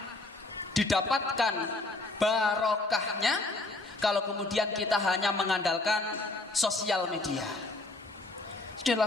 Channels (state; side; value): quieter; right; 3.0 dB